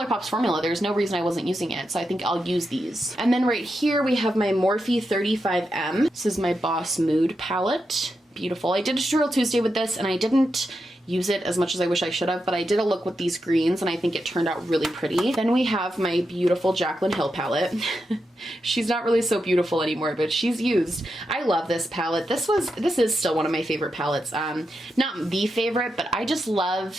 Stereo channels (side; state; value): both; normal; correlation 0.87